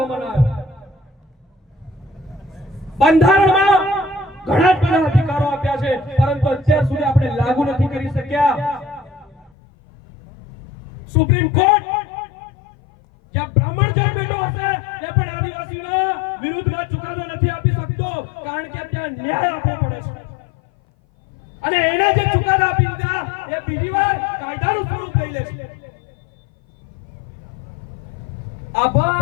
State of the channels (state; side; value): drops out; right; at 9.5 s